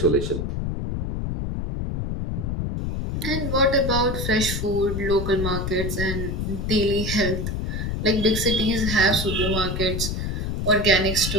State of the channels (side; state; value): left; noise; rumble, 2 dB below the sound